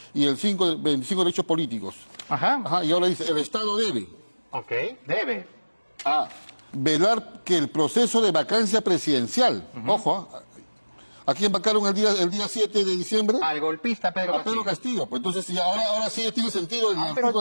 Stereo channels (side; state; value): both; inverted; correlation -1.00